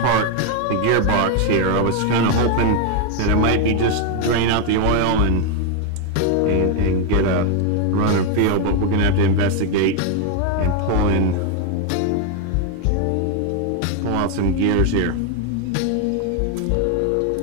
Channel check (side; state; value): both; different; correlation 0.01